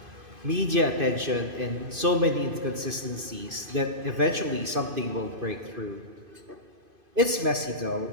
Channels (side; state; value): left; late; 2.5 ms